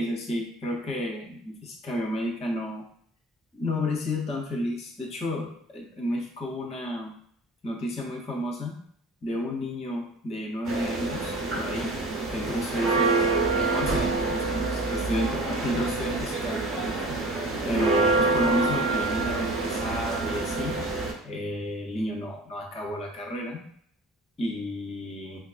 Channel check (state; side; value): normal; both; correlation 0.41